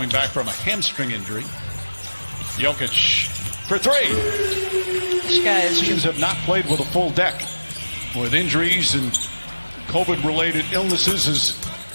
back from a hamstring injury. Jokic for three. This guy is Teams have not played with a full deck. With injuries and COVID-related illnesses is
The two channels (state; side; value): inverted; both; correlation -1.00